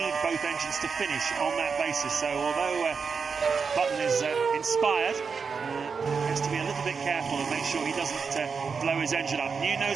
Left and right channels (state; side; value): quieter; left; 5.5 dB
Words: both engines to finish on that basis. So although Button is inspired, has to be a little bit careful and make sure he doesn't blow his engine up. New